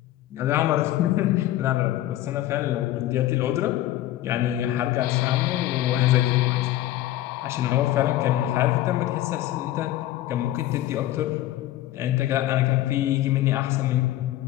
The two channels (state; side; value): quieter; right; 14.4 dB